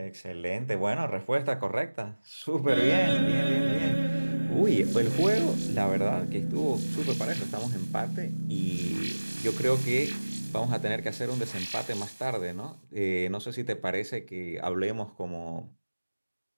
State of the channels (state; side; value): inverted; both; correlation -1.00